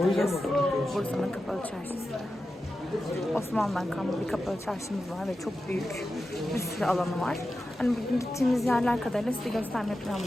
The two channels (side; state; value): both; normal; correlation 0.91